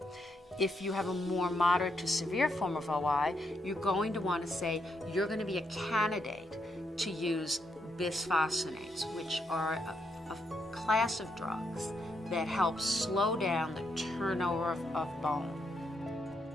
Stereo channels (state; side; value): normal; both; correlation 0.78